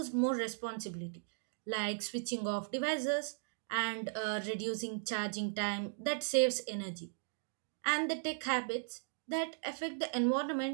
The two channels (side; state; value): left; silent; digital silence